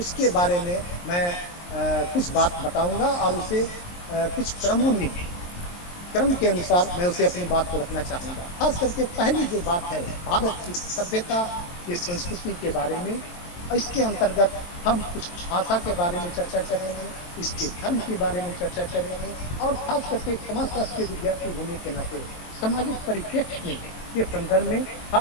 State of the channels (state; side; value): late; right; 23 ms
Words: बारे में मैं कुछ बात बताऊंगा और उसे कुछ क्रम के अनुसार मैं उसे अपनी बात को रखना चाहूंगा। खास करके पहली जो बात है भारत की सभ्यता की संस्कृति के बारे में, इसके अंतर्गत हम कुछ भाषा के बारे में चर्चा करेंगे, इसके धर्म के बारे में चर्चा करेंगे और खास करके एक समाजशास्त्र के विद्यार्थी होने के नाते सामाजिक परिप्रेक्ष्य में के संदर्भ में